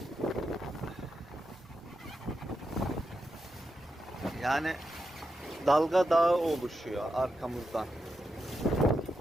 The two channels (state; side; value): normal; both; correlation 0.87